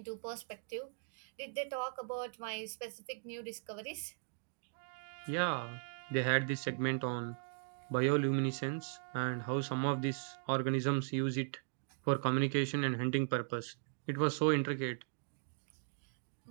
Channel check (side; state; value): left; silent; digital silence